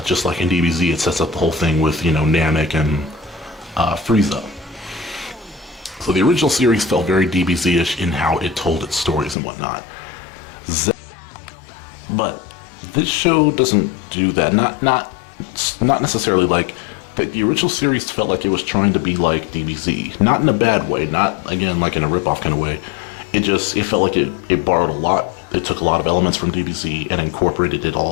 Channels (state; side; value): drops out; right; at 9.3 s